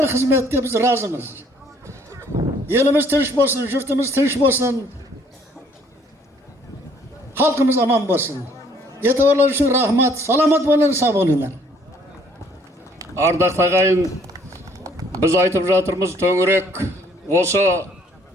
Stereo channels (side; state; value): both; normal; correlation 0.62